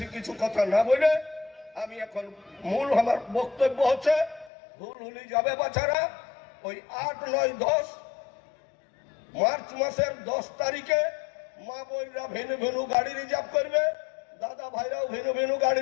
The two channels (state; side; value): drops out; right; at 4.5 s